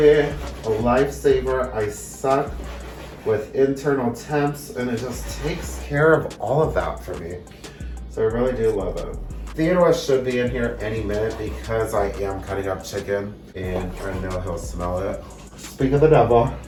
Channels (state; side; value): identical; both; correlation 1.00